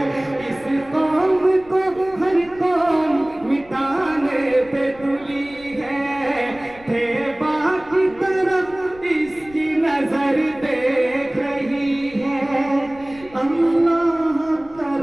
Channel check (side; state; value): left; noise; rumble, 23 dB below the sound